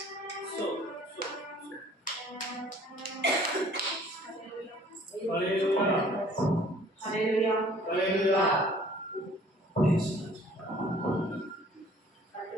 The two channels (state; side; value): normal; both; correlation 0.54